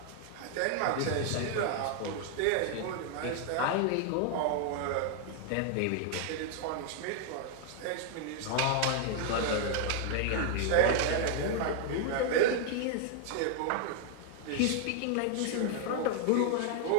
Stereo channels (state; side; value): different; both; correlation 0.00